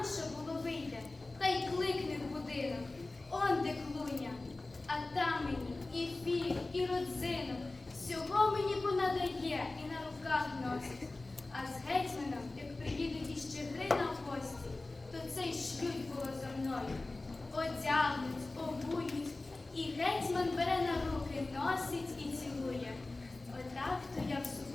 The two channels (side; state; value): right; quieter; 3.1 dB